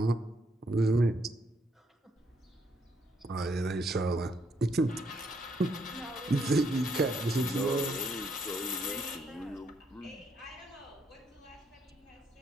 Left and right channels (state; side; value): normal; both; correlation 0.73